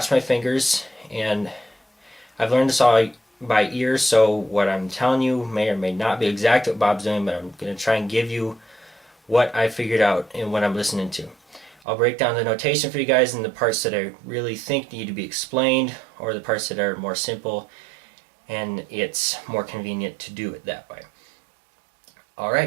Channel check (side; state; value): left; drops out; at 11.8 s